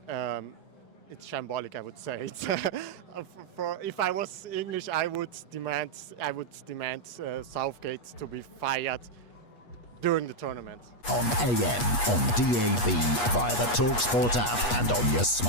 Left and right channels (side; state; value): right; late; 8.3 ms